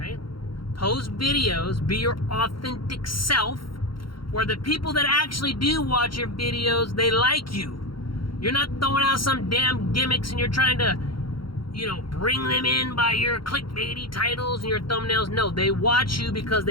Post videos, be your authentic self, where the people that actually do watch your videos, they like you. You're not throwing out some damn gimmicks and you're trying to, bring them in by your clickbaity titles and your thumbnails. No, they watch you because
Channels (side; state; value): right; late; 0.73 ms